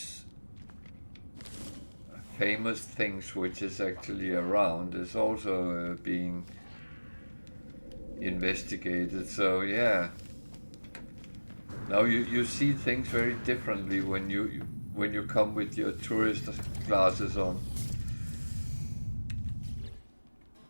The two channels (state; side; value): inverted; both; correlation -1.00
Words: famous things which is actually around is also being investigated. So yeah. Now you see things very differently when you come with your tourist glasses on.